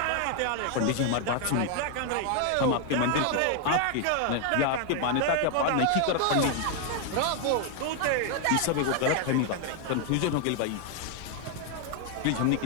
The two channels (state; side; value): different; both; correlation 0.00